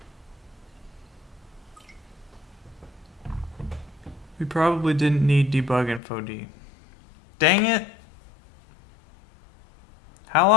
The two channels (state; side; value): drops out; right; at 6.0 s